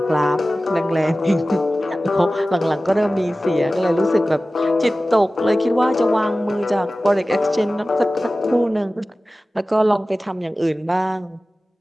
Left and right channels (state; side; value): normal; both; correlation 0.96